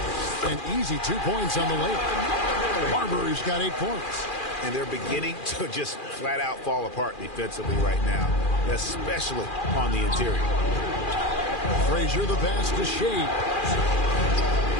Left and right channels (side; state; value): right; late; 2.4 ms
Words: An easy 2 points on the layup. Marbury's got 8 points. And they're beginning to just flat out fall apart defensively right now, especially on the interior. Frazier the pass to Shea.